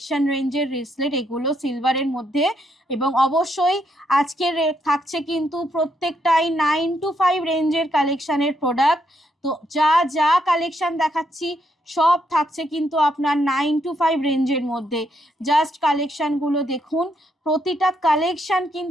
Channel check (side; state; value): both; normal; correlation 0.76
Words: রেঞ্জের রিসলেট এগুলো সিলভারের মধ্যে। এবং অবশ্যই আজকের থাকছে কিন্তু প্রত্যেকটাই 9 to 5 রেঞ্জের কালেকশনের প্রোডাক্ট। তো যা যা কালেকশন দেখাচ্ছি সব থাকছে কিন্তু আপনার 9 to 5 রেঞ্জের মধ্যে। জাস্ট কালেকশনগুলো দেখুন, প্রতিটা কালেকশন